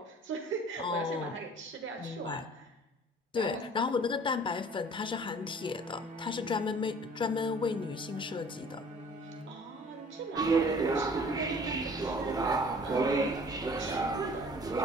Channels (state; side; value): normal; both; correlation 0.50